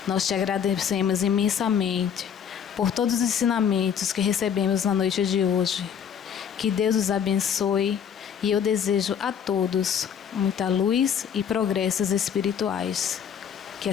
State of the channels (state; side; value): quieter; right; 8.0 dB